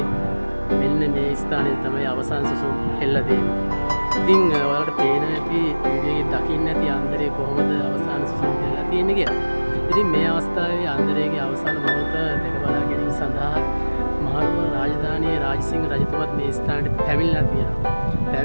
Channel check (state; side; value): inverted; both; correlation -1.00